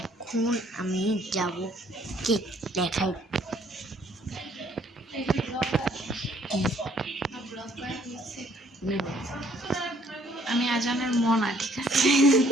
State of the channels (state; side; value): normal; both; correlation 0.62